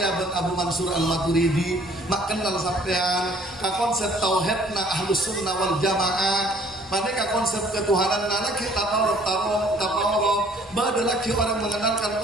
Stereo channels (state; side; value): normal; both; correlation 0.57